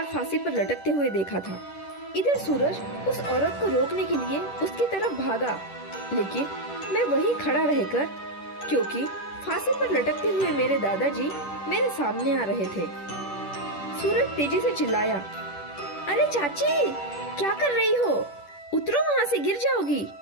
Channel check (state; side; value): late; right; 10 ms